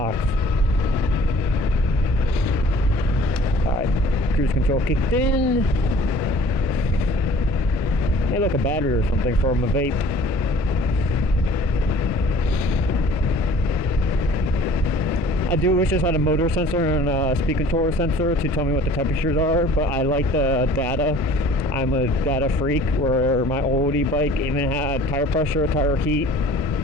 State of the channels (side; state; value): both; normal; correlation 0.50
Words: Alright, cruise control kicked in. Hey, look, a battery or something from a vape. I do wish this had a motor sensor and a speed controller sensor to tell me what the temperatures are, but I like the data. I'm a data freak, where my old e-bike even had tire pressure, tire heat,